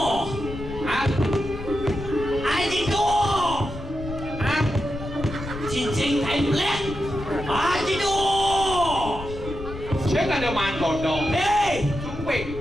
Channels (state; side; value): noise; left; rumble, 10 dB below the sound